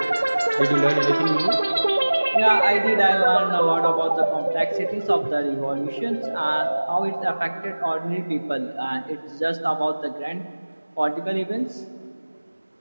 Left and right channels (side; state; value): both; inverted; correlation -1.00